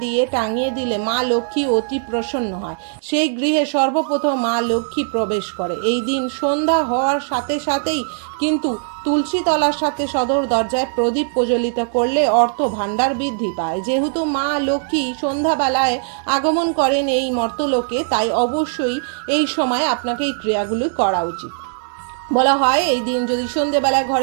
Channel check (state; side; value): silent; left; digital silence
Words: দিয়ে টাঙিয়ে দিলে মা লক্ষ্মী অতি প্রসন্ন হয়, সেই গৃহে সর্বপ্রথম মা লক্ষ্মী প্রবেশ করে। এই দিন সন্ধ্যা হওয়ার সাথেই কিন্তু তুলসী তলার সাথে সদর দরজায় প্রদীপ প্রজ্বলিত করলে অর্থ ভাণ্ডার বৃদ্ধি পায়। যেহেতু মা লক্ষ্মী সন্ধ্যাবেলায় আগমন করেন এই মর্তলোকে, তাই অবশ্যই এই সময় আপনাকে এই ক্রিয়াগুলি করা উচিত। বলা হয় এই দিন যদি সন্ধেবেলায়